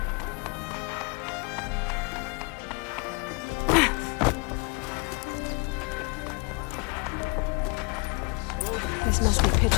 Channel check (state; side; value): quieter; right; 32.0 dB